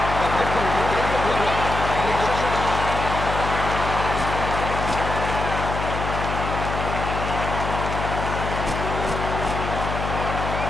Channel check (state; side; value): noise; left; hum, 4 dB below the sound